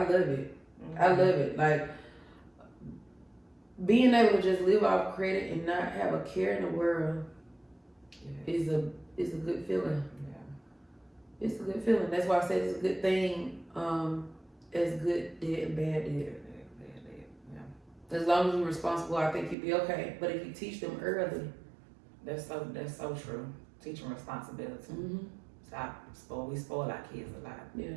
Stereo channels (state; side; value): drops out; left; at 19.6 s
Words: it. I love it. Like, being able to just live off credit and not have a care in the world is a good feeling. Yeah. It's a good feeling. That's why I say it's a good thing. As good debt and bad debt. Yeah. As long as you're responsible, I think you'll be okay. But if you teach them early, that's so true. Teach them responsibility. We spoil our kids a lot. Yeah.